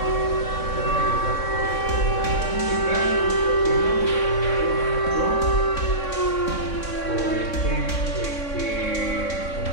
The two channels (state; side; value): late; right; 3.6 ms